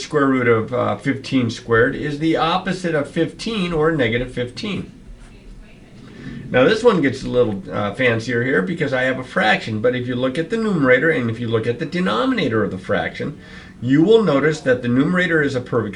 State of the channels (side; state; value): both; identical; correlation 1.00